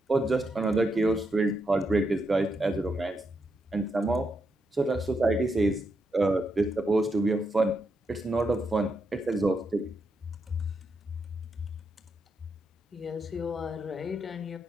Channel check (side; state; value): both; normal; correlation 0.82